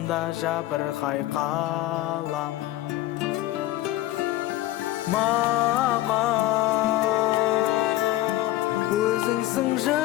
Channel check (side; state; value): right; quieter; 15.8 dB